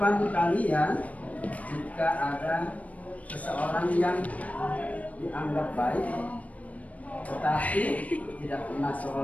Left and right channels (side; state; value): right; late; 0.069 ms